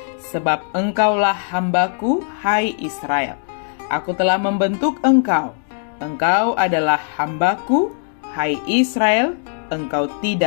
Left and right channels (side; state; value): right; silent; digital silence